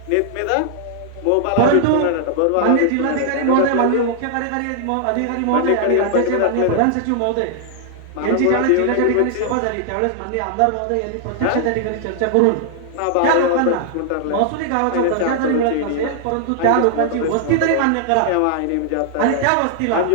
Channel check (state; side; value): different; both; correlation -0.01